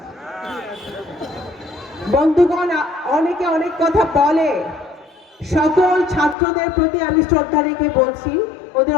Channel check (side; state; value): right; drops out; at 6.4 s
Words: বন্ধুগণ, অনেকে অনেক কথা বলে, সকল ছাত্রদের প্রতি আমি শ্রদ্ধা রেখে বলছি, ওদের